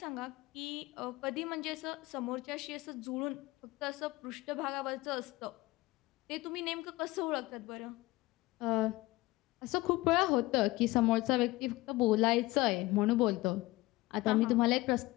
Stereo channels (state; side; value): quieter; right; 19.9 dB